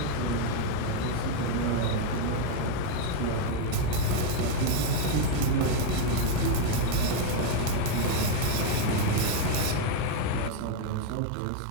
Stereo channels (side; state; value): both; different; correlation 0.01